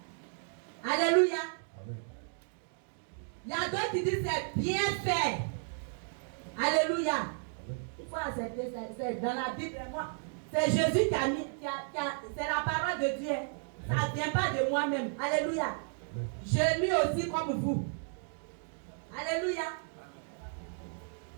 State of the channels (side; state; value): left; silent; 55 dB below the other